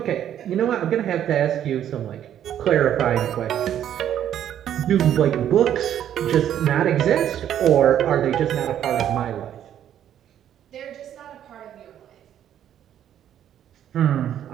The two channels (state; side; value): quieter; left; 10.5 dB